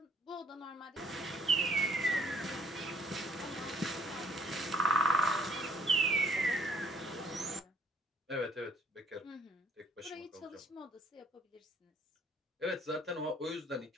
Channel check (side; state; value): both; normal; correlation 0.60